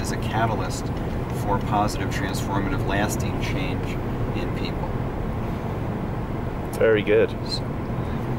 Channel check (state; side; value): identical; both; correlation 1.00